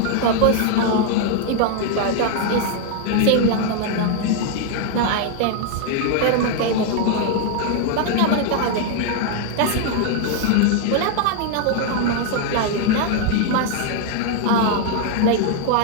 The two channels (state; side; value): different; both; correlation 0.00